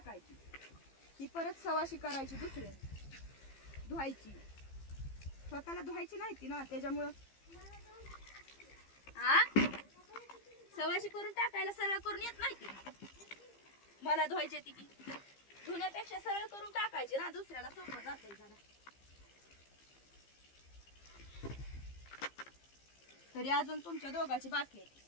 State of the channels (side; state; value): right; late; 15 ms